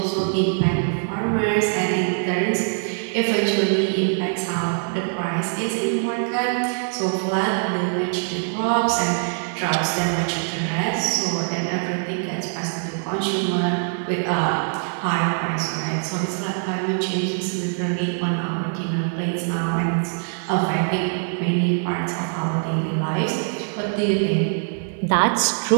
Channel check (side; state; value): left; silent; 63 dB below the other